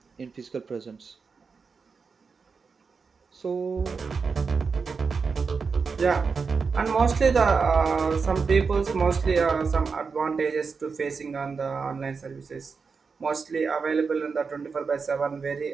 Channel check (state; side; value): quieter; left; 5.1 dB